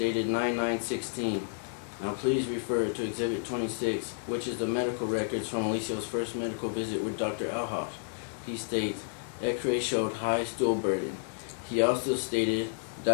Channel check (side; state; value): right; silent; 57 dB below the other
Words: 9/9/16. Now please refer to Exhibit 26, which is the medical records from Alicia's first medical visit with Dr. Alhoff. He states, x-ray showed high stool burden. He also stated